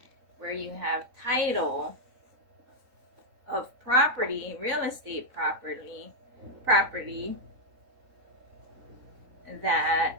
where you have title of property, real estate property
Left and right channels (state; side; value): late; left; 4.0 ms